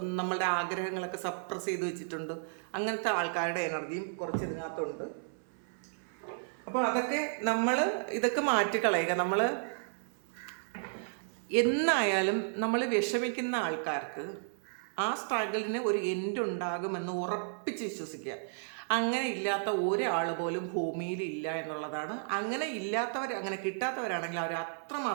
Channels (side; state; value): left; silent; 56 dB below the other